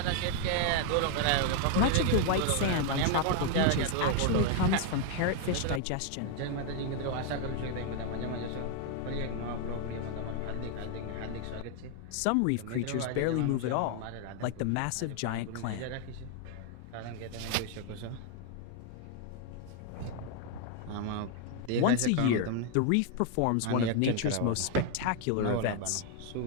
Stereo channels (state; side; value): different; both; correlation 0.00